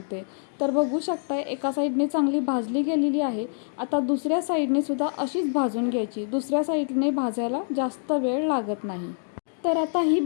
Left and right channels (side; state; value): right; silent; digital silence